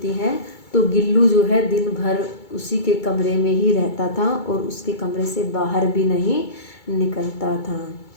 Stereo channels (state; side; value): late; right; 2.3 ms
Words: है तो गिल्लू जो है दिन भर उसी के कमरे में ही रहता था और उसके कमरे से बाहर भी नहीं निकलता था।